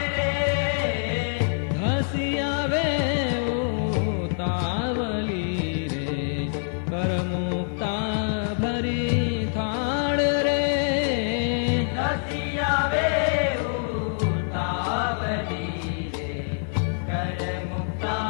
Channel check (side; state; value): right; silent; digital silence